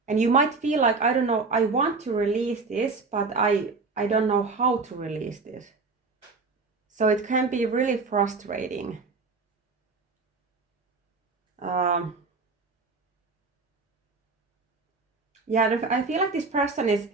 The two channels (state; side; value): quieter; left; 4.1 dB